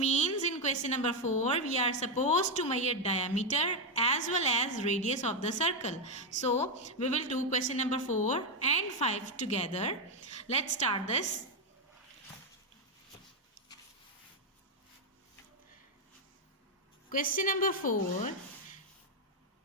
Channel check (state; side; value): normal; both; correlation 0.05